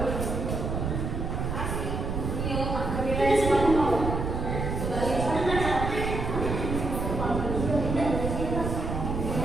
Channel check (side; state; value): right; noise; rumble, 2 dB below the sound